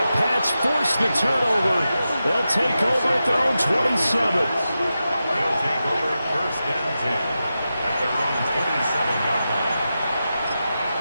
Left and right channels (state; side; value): inverted; both; correlation -0.91